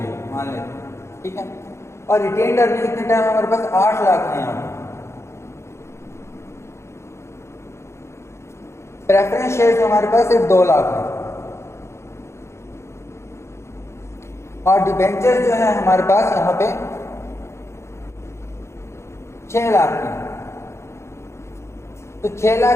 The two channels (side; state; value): right; late; 0.13 ms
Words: मान लेते हैं, ठीक है। और रिटेन्ड अर्निंग कितने टाइम हमारे पास 8 लाख है यहाँ पे। प्रेफरेंस शेयर्स हमारे पास सिर्फ 2 लाख है, और डिबेंचर जो है हमारे पास यहाँ पे 6 लाख की। तो 6 लाख